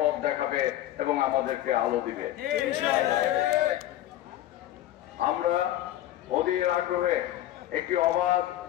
দেখাবে এবং আমাদেরকে আলো দিবে। আমরা অধীর আগ্রহে একটি অবাধ,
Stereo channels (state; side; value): quieter; right; 13.4 dB